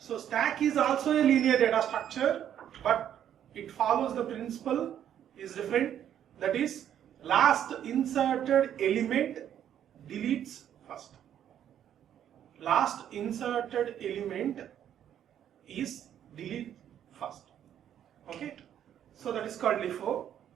stack is also a linear data structure, but it follows the principle is different. That is, last inserted element deletes first. Last inserted element is delete first. Okay. So that is called LIFO.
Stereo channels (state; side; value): quieter; left; 10.1 dB